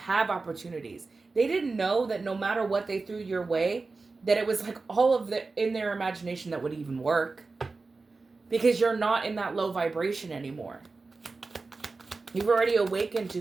opportunities. They didn't know that no matter what they threw your way, that it was like all of the in their imagination that would even work, because you're not in that low vibration anymore. You've already awakened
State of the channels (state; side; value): quieter; left; 3.9 dB